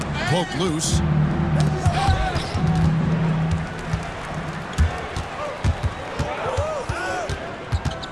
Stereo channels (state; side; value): identical; both; correlation 1.00